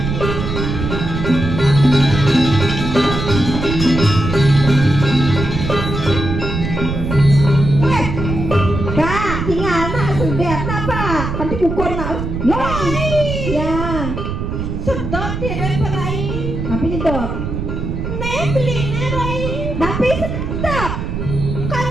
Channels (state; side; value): noise; right; rumble, 4 dB below the sound